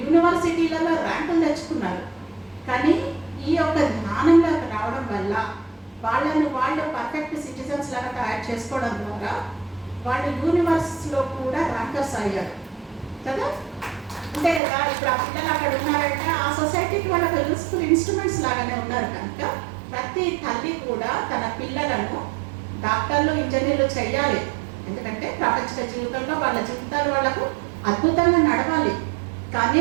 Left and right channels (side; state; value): left; drops out; at 14.6 s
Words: ర్యాంకులు తెచ్చుకున్నారు. కానీ ఈ యొక్క జ్ఞానంలోకి రావడం వల్ల వాళ్ళు పర్ఫెక్ట్ సిటిజన్స్ లాగా తయారు చేసుకోవడం ద్వారా వాళ్ళు యూనివర్సిటీలో కూడా ర్యాంకర్స్ అయ్యారు కదా. అంతే కదా, ఇప్పుడు ఆ పిల్లలు అక్కడ ఉన్నారంటే ఆ సొసైటీకి వాళ్ళకి యూస్ఫుల్ ఇన్స్ట్రుమెంట్స్ లాగానే ఉన్నారు. కనుక ప్రతి తల్లి కూడా తన పిల్లలను డాక్టర్లు, ఇంజనీర్లు చేయాలి. ఎందుకంటే ప్రపంచ జీవితంలో వాళ్ళ జీవితాలు వాళ్ళకు అద్భుతంగా నడవాలి. కానీ